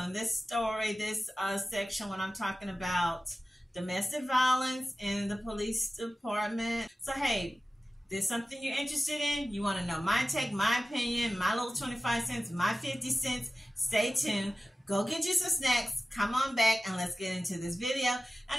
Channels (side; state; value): both; normal; correlation 0.96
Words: this story, this section when I'm talking about domestic violence in the police department. So hey, there's something you're interested in, you want to know my take, my opinion, my little 25 cents, my 50 cents, stay tuned. Go get you some snacks, come on back, and let's get into this video.